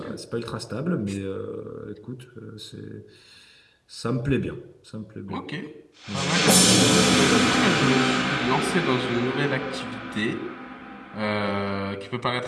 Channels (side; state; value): both; identical; correlation 1.00